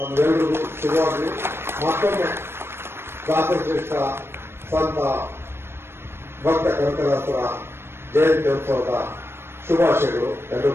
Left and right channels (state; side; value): late; left; 0.12 ms